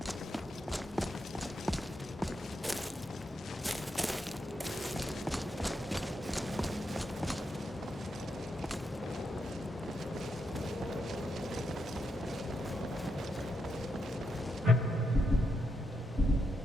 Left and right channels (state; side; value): normal; both; correlation 0.83